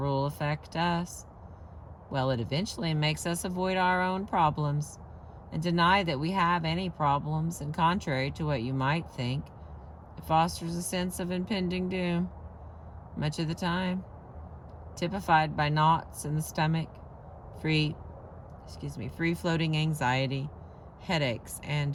affect us? Well, it eventually makes us avoid our own problems and deny that we have any problems, and contrary to what you might think, it fosters a sense of impending doom, much of the time, typified by knots in the stomach, free-floating anxiety, headaches,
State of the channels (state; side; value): identical; both; correlation 1.00